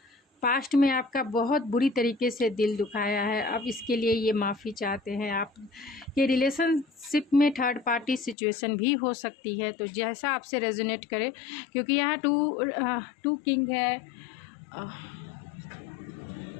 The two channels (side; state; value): right; drops out; at 8.3 s